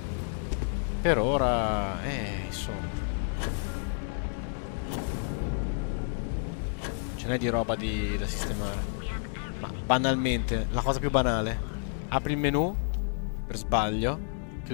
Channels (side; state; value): right; silent; digital silence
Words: Per ora, insomma. Ce n'è di roba da sistemare. Ma banalmente, la cosa più banale. Apri il menu, per sbaglio,